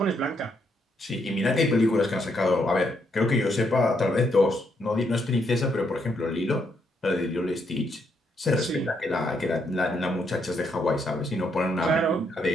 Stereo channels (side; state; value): both; normal; correlation 0.76